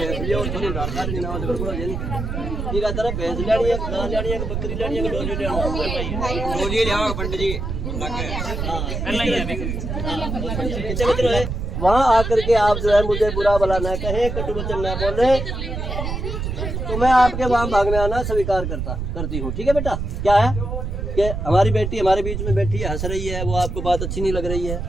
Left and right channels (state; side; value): noise; right; rumble, 4 dB below the sound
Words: ठीक है। तरह भैंस लेनी है, गाय लेनी है, बकरी लेनी है, डोली लेनी है पंडित जी कितने मित्र है। वहाँ आकर के आप जो है मुझे बुरा भला न कहें, कटु वचन न बोले, तो मैं आपके वहाँ भागने आना स्वीकार करती हूँ। ठीक है बेटा। क्या है कि हमारी बेटी हमारे बीच में बैठी है, हंस रही है, वो आपको बात अच्छी नहीं लग रही है,